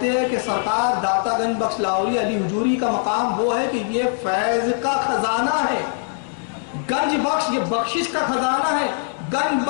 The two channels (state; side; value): silent; right; 65 dB below the other